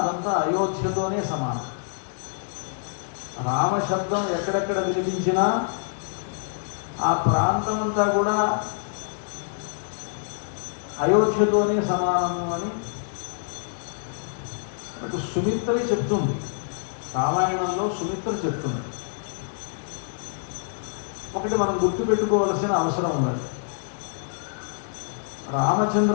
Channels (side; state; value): right; silent; digital silence